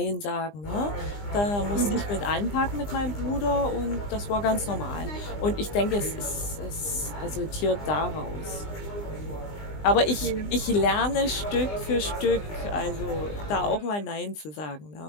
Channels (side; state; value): right; late; 20 ms